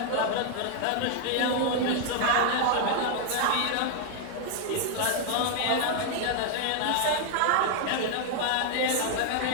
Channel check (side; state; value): both; different; correlation 0.00